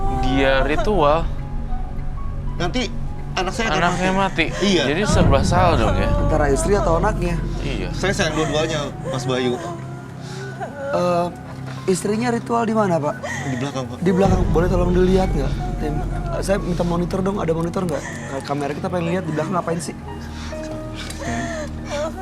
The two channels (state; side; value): identical; both; correlation 1.00